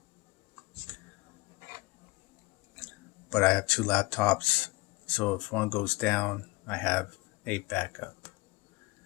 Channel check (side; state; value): right; quieter; 23.8 dB